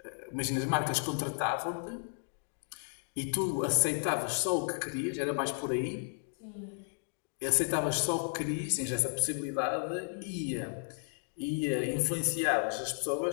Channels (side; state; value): right; silent; 55 dB below the other